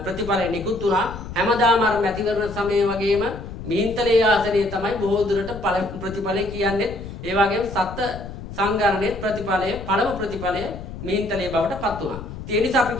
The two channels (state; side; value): noise; left; rumble, 11 dB below the sound